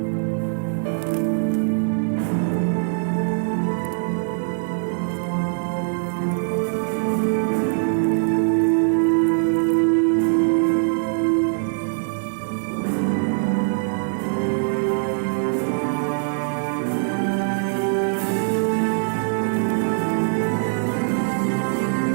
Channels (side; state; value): left; silent; digital silence